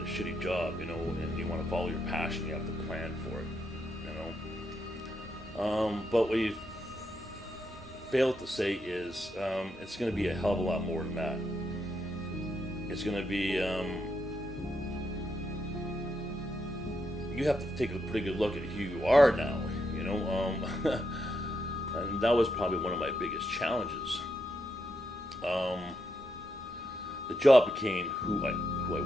shitty job, you know, and you want to follow your passion, you have to plan for it, you know. But what you fail to say is it's going to be a hell of a lot more than that. It's going to be, you have to take a pretty good look at who you are now, you know. And that was probably one of my biggest challenges. The job became who I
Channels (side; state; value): both; normal; correlation 0.81